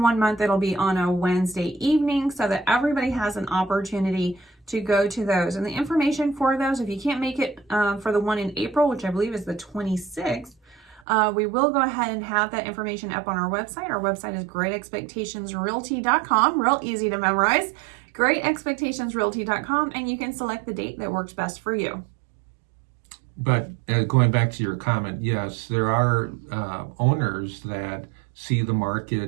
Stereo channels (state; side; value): drops out; left; at 11.0 s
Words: 1 month it'll be on a Wednesday evening, so that everybody has an opportunity to go to those. And the information for those, if you can't make it for the one in April, which I believe is the 26th, we will go ahead and have that information up on our website. Our website is GER.ExpectationsRealty.com, real easy to memorize, GER.ExpectationsRealty.com, and you can select the date that works best for you. But going back to your comment, yes, there are owners that see the